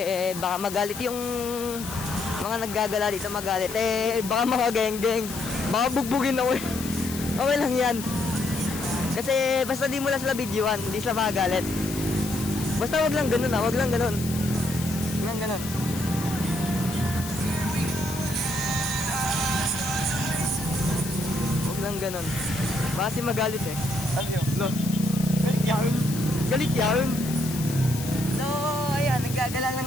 baka magalit yung mga naggagala dito, magalit. Baka mga geng-geng. Baka bugbugin ako eh. Okay lang yan. Kasi basta di mo lang sila videoan, hindi sila magagalit. Basta wag lang ganun wag lang ganun. Wag lang ganun. Wag lang ganun. Baka si magalit eh. Ano yun? Lo. Galit yan. Galit yan. So, ayan, naggagala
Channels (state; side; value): noise; left; hiss, 10 dB below the sound